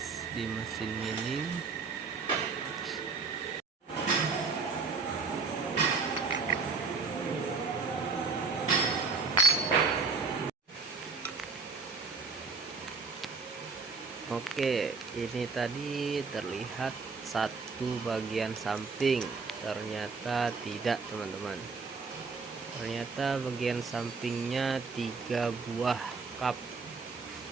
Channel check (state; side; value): quieter; left; 4.6 dB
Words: di mesin milling. Oke, ini tadi terlihat satu bagian samping, ternyata tidak teman-teman. Ternyata bagian sampingnya 3 buah cup.